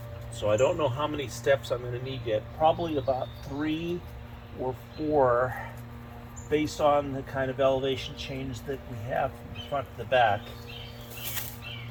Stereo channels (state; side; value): identical; both; correlation 1.00